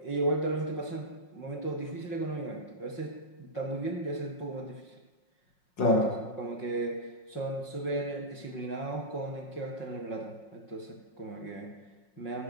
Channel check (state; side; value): late; right; 5.5 ms